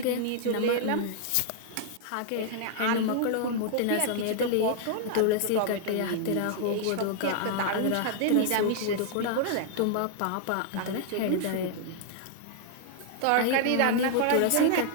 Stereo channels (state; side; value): different; both; correlation -0.01